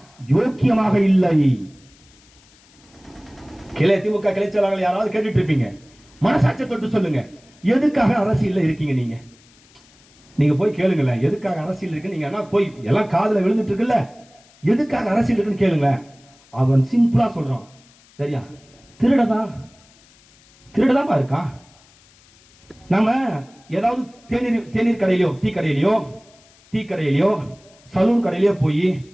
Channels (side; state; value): left; noise; hiss, 29 dB below the sound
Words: யோக்கியமாக இல்லை? திமுக கிளை செயலாளர்கள் யாராவது கேட்டுட்டு இருப்பீங்க, மனசாட்சியை தொட்டு சொல்லுங்க, எதுக்காக அரசியல் இருக்கீங்க? நீங்க போய் கேளுங்களேன், எதுக்காக அரசியல் இருக்கு? நீங்க போய் எல்லாம் காதுல விழுந்துட்டு இருக்குல்ல, எதுக்காக அரசியல் இருக்குன்னு கேளுங்க. அவன் சிம்பிளா சொல்றான், சரியா? திருடதான் இருக்கான். நாம ஏதாவது தேநீர் கடையிலயோ டீ கடையிலயோ சலூன் கடையிலயோ போய்